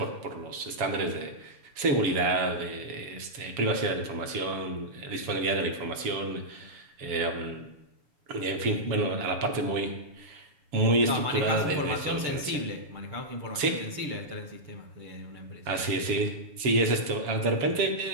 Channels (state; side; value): late; left; 7.3 ms